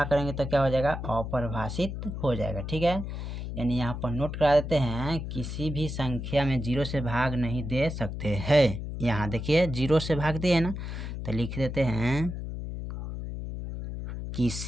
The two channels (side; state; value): left; noise; hum, 6 dB below the sound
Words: करेंगे तो क्या हो जाएगा, अपरिभाषित हो जाएगा, ठीक है। यानी यहाँ पर नोट करा देते हैं, किसी भी संख्या में 0 से भाग नहीं दे सकते हैं। यहाँ देखिए 0 से भाग दिए ना, तो लिख देते हैं